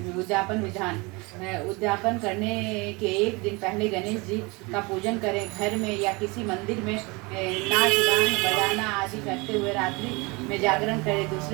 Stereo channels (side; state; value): left; quieter; 26.4 dB